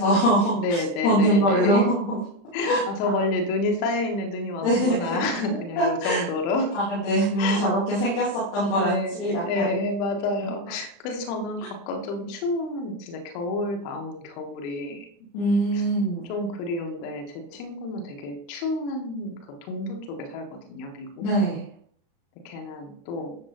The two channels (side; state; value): right; late; 35 ms